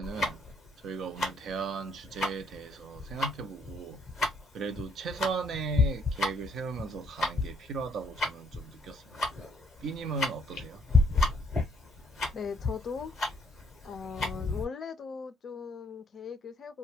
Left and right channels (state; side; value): normal; both; correlation 0.67